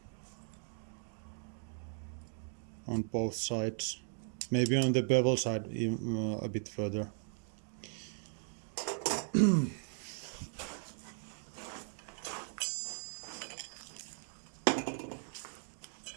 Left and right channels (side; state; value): left; silent; 53 dB below the other